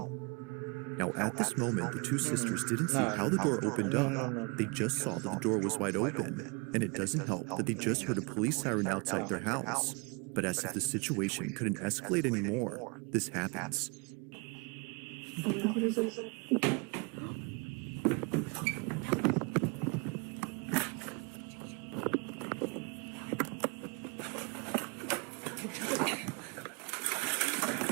Now at this moment, the 2 sisters didn't see how the door opened up. They just saw that the door was wide open. And it doesn't help that they just heard a police siren outside their house. But as if the situation couldn't escalate anymore, this happens.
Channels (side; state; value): left; quieter; 30.7 dB